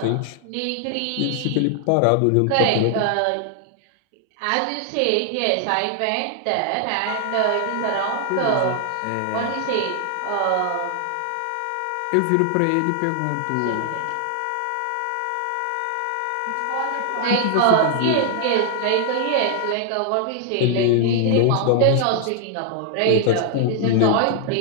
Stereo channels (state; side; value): different; both; correlation 0.00